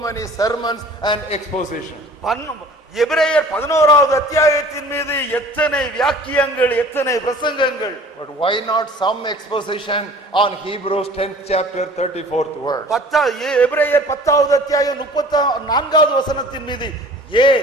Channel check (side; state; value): both; normal; correlation 0.47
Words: many sermons and exposition. எபிரேயர் 11வது அத்தியாயத்தின் மீது எத்தனை வியாக்கியங்கள், எத்தனை பிரசங்கங்கள். But why not some exposition on Hebrews 10th chapter 34th verse? எபிரேயர் 10வது அத்தியாயம் 34வது வசனத்தின் மீது